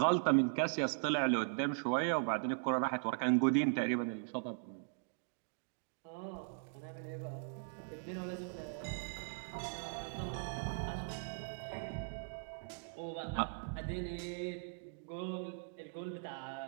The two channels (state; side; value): silent; left; digital silence